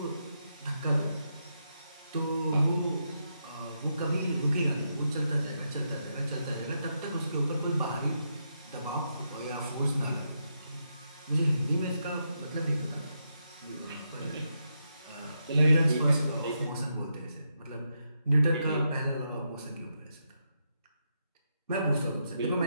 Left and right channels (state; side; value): inverted; both; correlation -0.82